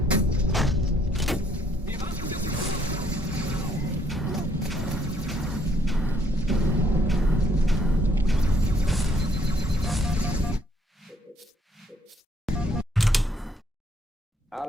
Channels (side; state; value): both; normal; correlation 0.67